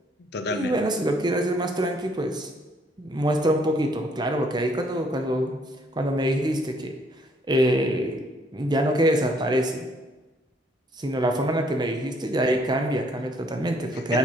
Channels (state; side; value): normal; both; correlation 0.66